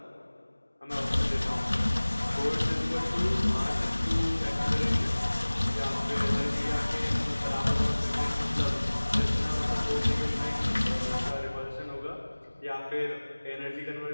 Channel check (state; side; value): inverted; both; correlation -1.00